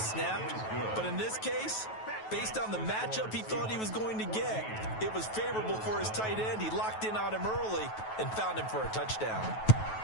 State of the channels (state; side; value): late; right; 9.2 ms